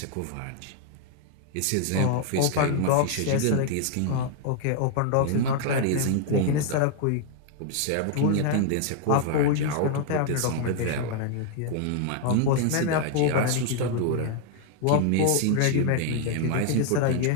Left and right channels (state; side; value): different; both; correlation 0.00